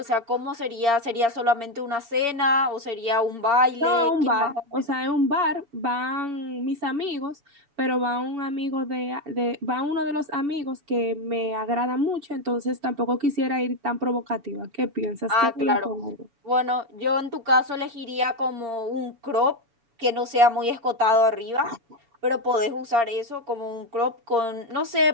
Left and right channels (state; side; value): late; left; 7.1 ms